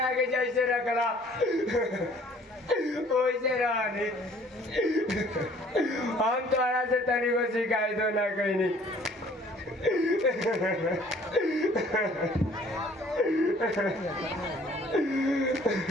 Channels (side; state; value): both; normal; correlation 0.56